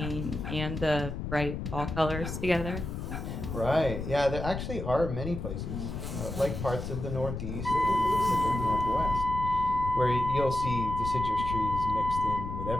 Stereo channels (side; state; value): left; noise; rumble, 5 dB below the sound